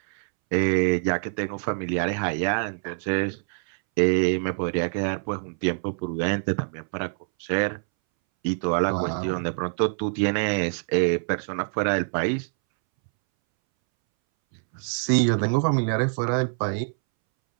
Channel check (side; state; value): left; silent; 61 dB below the other